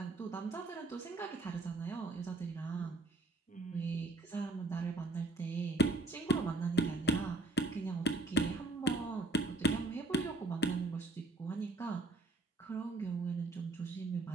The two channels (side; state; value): left; quieter; 3.2 dB